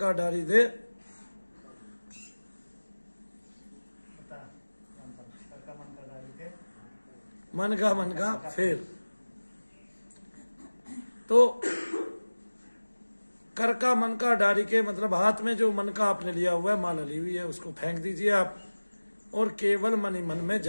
डारी दे। मन का फेर। तो कर का मन का डारी के मतलब हाथ में जो मन का आपने लिया हुआ है, माला ली हुई है, उसको फेंक दीजिए आप और केवल मन ही मन में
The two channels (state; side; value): inverted; both; correlation -1.00